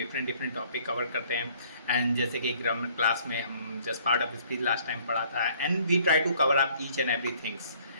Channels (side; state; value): both; inverted; correlation -0.60